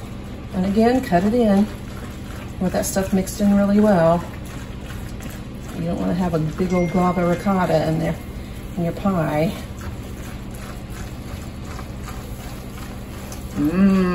And again, cut it in with that stuff mixed in really well. You don't want to have a big old glob of ricotta in there in your pie.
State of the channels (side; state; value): both; identical; correlation 1.00